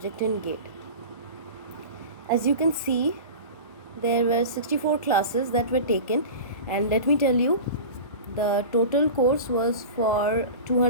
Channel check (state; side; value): inverted; both; correlation -0.32